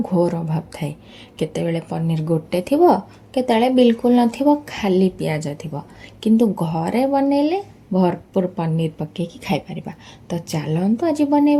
अभाव थाए। केतेबेले पनीर गोटे थिबो, केतेबेले बिल्कुल नथिबो, खाली पियाज थिबो। किंतु घरे बनेले भरपूर पनीर पकेकी खाई परिबा। तो चलतु आज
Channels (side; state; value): both; identical; correlation 1.00